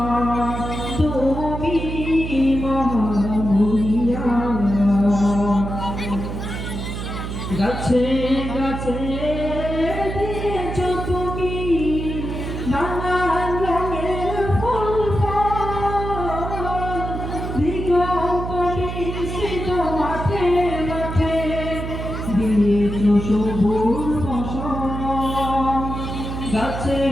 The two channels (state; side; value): noise; right; hum, 5 dB below the sound